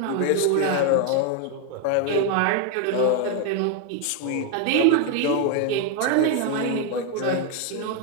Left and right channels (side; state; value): both; different; correlation 0.01